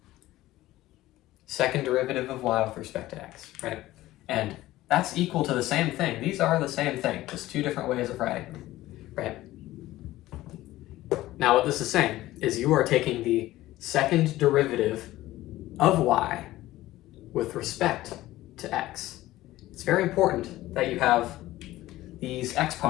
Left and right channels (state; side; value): quieter; right; 16.2 dB